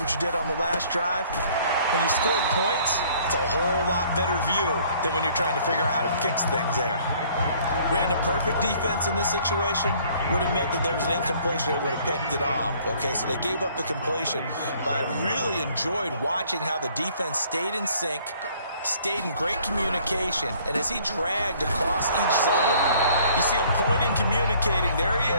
you did on the last drive. When you score points, it's a whole lot better view than when you're trying to figure out how to fix things there. Ran a perfect defense in this situation would have meant that there was an incompletion that would have picked it off. Okay, so they gave up the completion. But I really enjoyed watching how the defense stayed in sync, stayed in great communication, and as he dragged across each zone, you see him pointing, communicating. There he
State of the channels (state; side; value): inverted; both; correlation -0.58